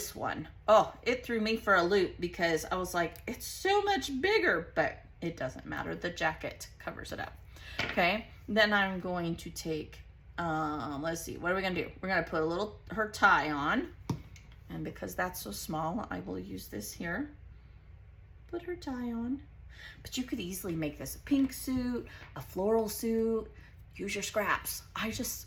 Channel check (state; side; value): identical; both; correlation 1.00